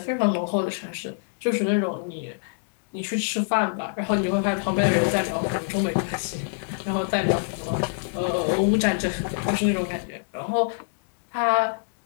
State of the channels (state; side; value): silent; right; digital silence